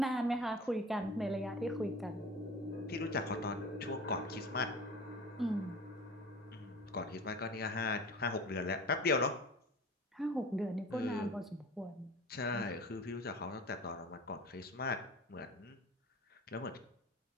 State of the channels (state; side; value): normal; both; correlation 0.38